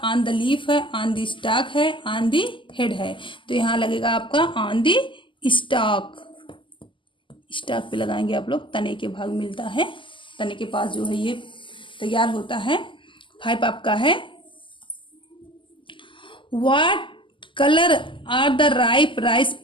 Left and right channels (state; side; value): late; right; 0.25 ms